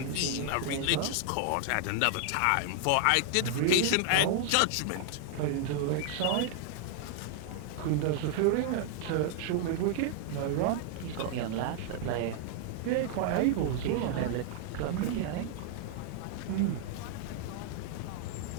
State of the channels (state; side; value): different; both; correlation 0.00